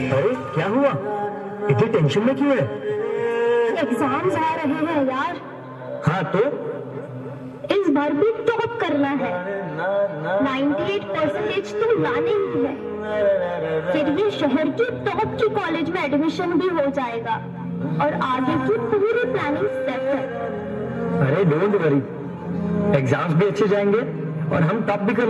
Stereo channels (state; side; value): identical; both; correlation 1.00